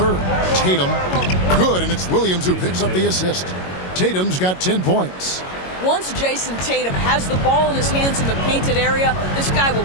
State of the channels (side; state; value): right; late; 22 ms